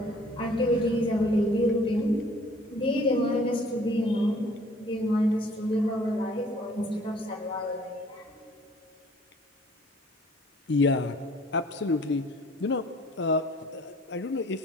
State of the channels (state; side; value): normal; both; correlation 0.55